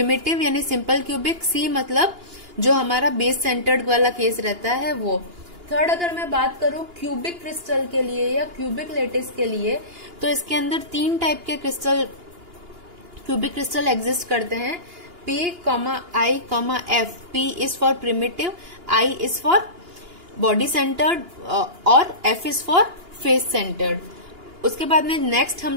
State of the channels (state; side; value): late; left; 2.8 ms